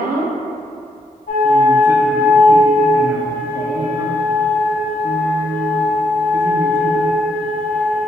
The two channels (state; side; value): normal; both; correlation 0.75